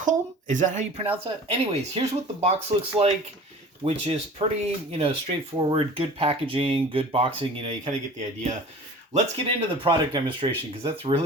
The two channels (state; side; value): normal; both; correlation 0.42